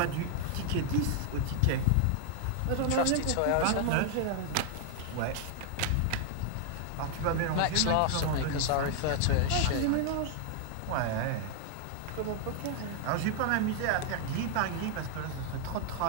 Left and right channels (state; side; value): different; both; correlation 0.00